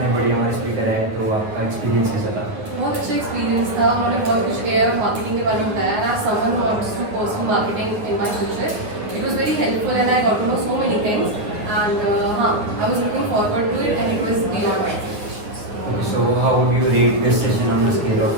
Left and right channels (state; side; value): late; left; 9.5 ms